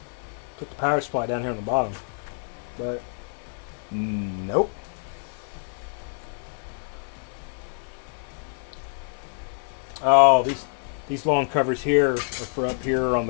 put the power supply down here on the bottom, but nope. Oh, these long covers here are for up here on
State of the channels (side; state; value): right; silent; 60 dB below the other